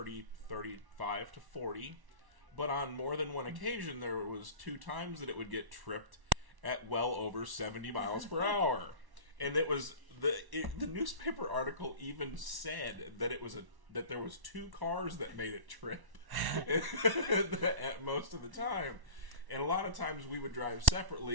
35 to 40. But on more than one occasion, there was 2 times that it would get tripped at well over 70 miles per hour. And it was the newspaper article even said that that there was 2 cars that made it trip at most of the time. And a lot of times we would drive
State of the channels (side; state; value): left; late; 1.1 ms